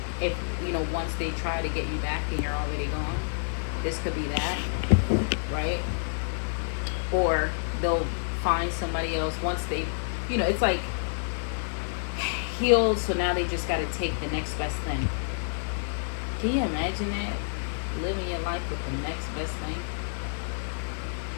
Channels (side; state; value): right; silent; 59 dB below the other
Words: If, you know, once they try to get you back and you're already gone, this could be that, right? Or they'll find somebody else once they, you know, it's like healed, so now they just got to take the next best thing. Can you imagine that? Living your life with the next best thing?